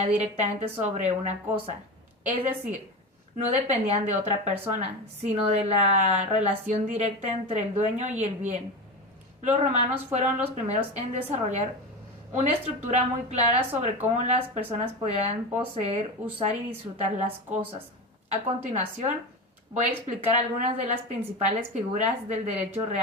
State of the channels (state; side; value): normal; both; correlation 0.23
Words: directamente sobre una cosa. Es decir, no dependían de otra persona, sino de la relación directa entre el dueño y el bien. Los romanos fueron los primeros en desarrollar una estructura muy clara sobre cómo las personas podían poseer, usar y disfrutar las cosas. A continuación, voy a explicar algunas de las principales figuras del derecho